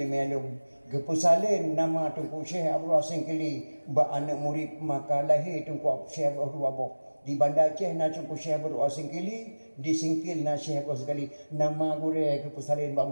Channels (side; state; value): both; inverted; correlation -1.00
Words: alum gepusalin nama Tungku Syekh Abdul Hasan Kili ba anak murid maka lahir Tungku Syekh Abdul Wabah di Bandar Aceh na Tungku Syekh Abdul Hasan Kili disingkil na Syekh Abdul Hasan Kili nama gure gepusalin ba